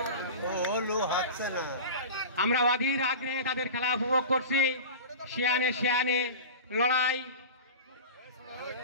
আমরা অধীর আগ্রহে তাদের খেলা উপভোগ করছি। শিয়ানে লড়াই।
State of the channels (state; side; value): inverted; both; correlation -0.32